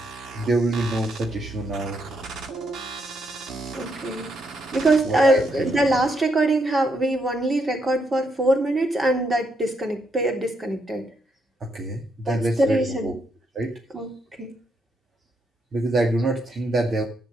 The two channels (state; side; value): normal; both; correlation 0.78